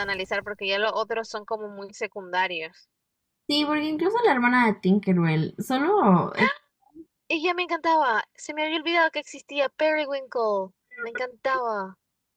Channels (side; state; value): both; identical; correlation 1.00